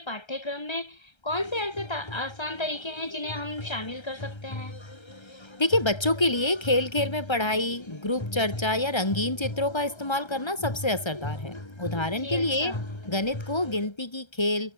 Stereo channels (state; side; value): late; right; 1.3 ms